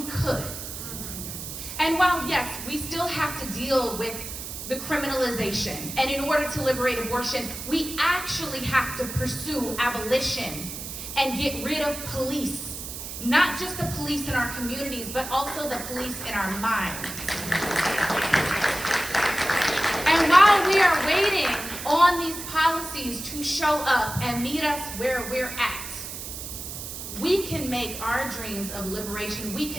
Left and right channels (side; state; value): right; noise; hiss, 8 dB below the sound